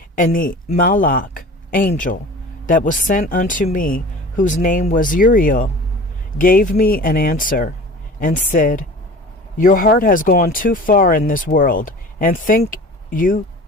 And the Malach angel that was sent unto me, whose name was Uriel, gave me an answer, and said, Your heart has gone too far in this world, and think you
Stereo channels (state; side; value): normal; both; correlation 0.40